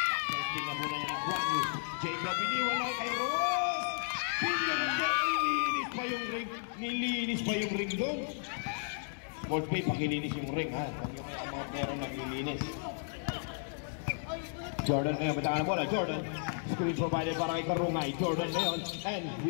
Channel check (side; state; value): right; silent; digital silence